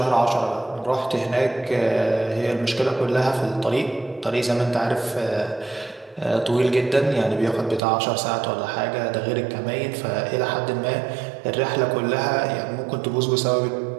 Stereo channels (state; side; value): drops out; left; at 7.8 s